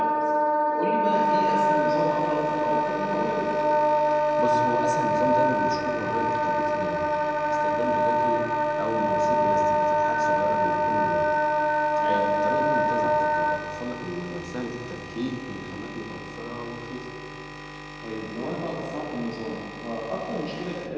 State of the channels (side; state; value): both; identical; correlation 1.00